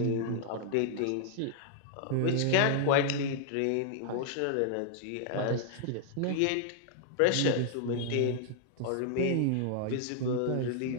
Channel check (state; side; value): different; both; correlation -0.01